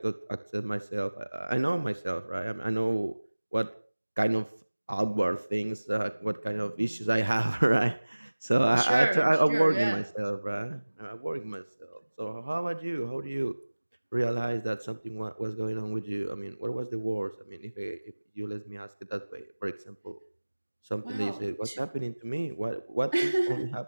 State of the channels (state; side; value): inverted; both; correlation -1.00